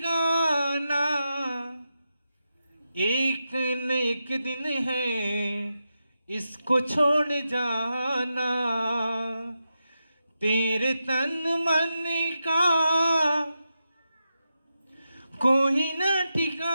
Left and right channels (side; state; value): both; inverted; correlation -0.88